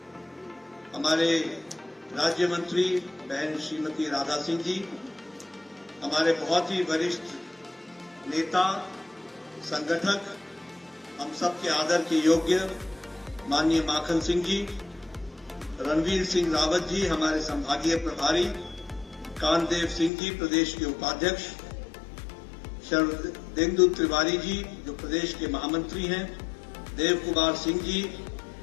हमारे राज्य मंत्री बहन श्रीमती राधा सिंह जी, हमारे बहुत ही वरिष्ठ नेता संगठक, हम सबके आदर के योग्य माननीय माखन सिंह जी, रणवीर सिंह रावत जी हमारे संभागीय प्रभारी, कांतदेव सिंह जी प्रदेश के उपाध्यक्ष, शरदेंदु तिवारी जी जो प्रदेश के महामंत्री हैं, देव कुमार सिंह जी,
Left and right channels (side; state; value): right; drops out; at 20.1 s